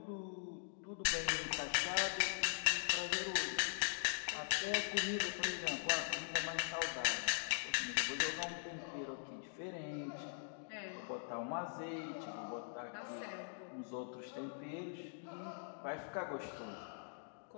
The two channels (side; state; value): right; silent; digital silence